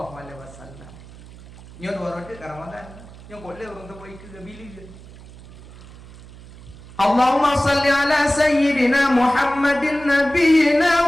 alaihi wasallam. Nyo dua roti ke Ramadan. Yang boleh orang sebut ikut ke bilik je. Allahumma salli ala sayyidina Muhammadin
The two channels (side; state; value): right; noise; hum, 19 dB below the sound